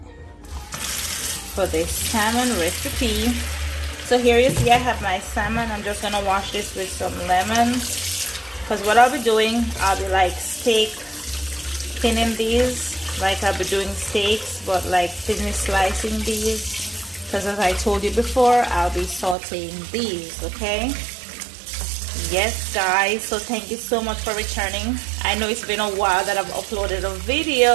for this salmon recipe. So here you see I have my salmon. I'm just gonna wash this with some lemons, because what I'll be doing, I'll be like steak thinning these, like I'll be doing steaks, but like thinly slicing these, because as I told you before, I'll be sauteing these. Okay, yes guys, so thank you so much for returning. I know it's been a while that I've uploaded a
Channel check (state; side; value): drops out; left; at 19.4 s